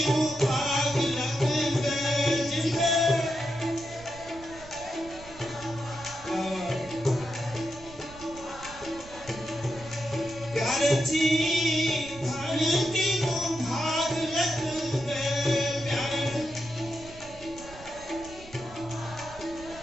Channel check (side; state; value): right; noise; rumble, 18 dB below the sound